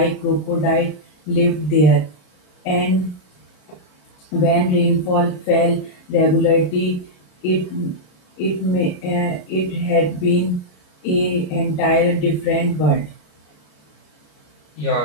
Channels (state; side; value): late; right; 33 ms